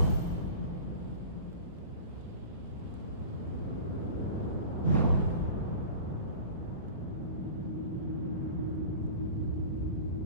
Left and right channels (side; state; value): both; inverted; correlation -0.38